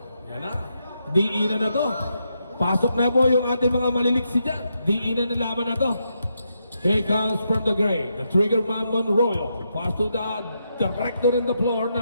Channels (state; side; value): inverted; both; correlation -0.82